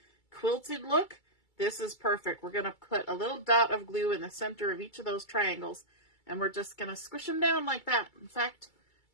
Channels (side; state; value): right; late; 2.3 ms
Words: quilted look, this is perfect. We're going to put a little dot of glue in the center of each of those triangles, and we're just going to squish them down like that. In fact,